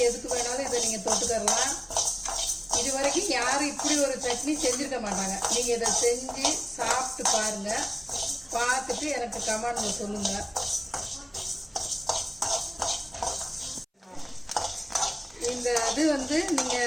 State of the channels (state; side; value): identical; both; correlation 1.00